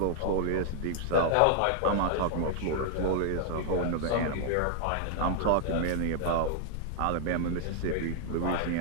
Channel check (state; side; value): different; both; correlation 0.00